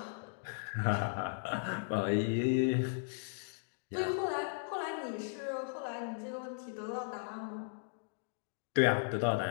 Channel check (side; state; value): right; silent; digital silence